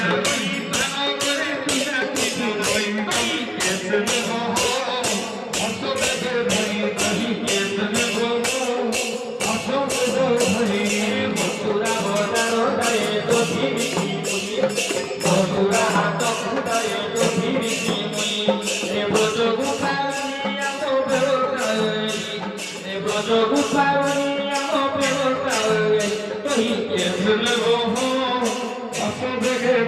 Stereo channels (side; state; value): both; identical; correlation 1.00